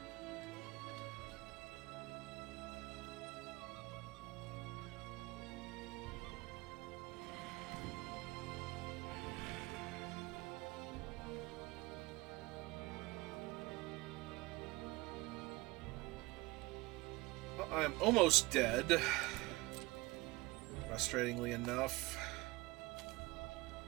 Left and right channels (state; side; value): quieter; left; 21.7 dB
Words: Well, I am almost dead. Frustratingly enough.